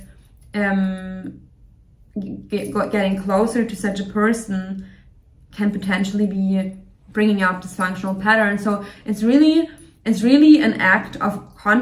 getting closer to such a person can potentially be bringing up dysfunctional patterns. So it's really an act of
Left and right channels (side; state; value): both; identical; correlation 1.00